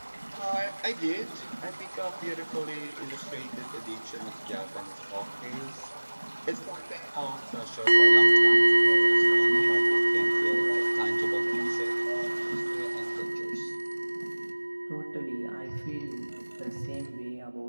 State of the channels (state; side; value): inverted; both; correlation -1.00